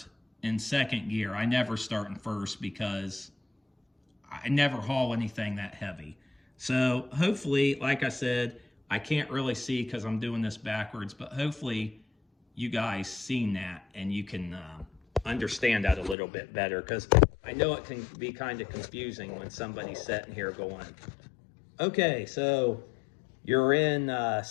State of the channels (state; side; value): drops out; right; at 16.2 s